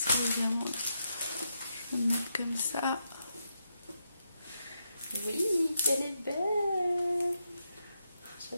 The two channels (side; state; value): both; inverted; correlation -0.83